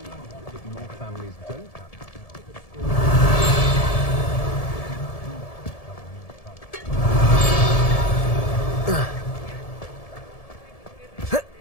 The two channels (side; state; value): right; late; 1.7 ms